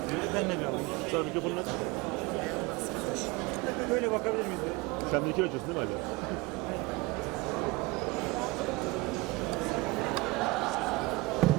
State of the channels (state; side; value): quieter; left; 22.9 dB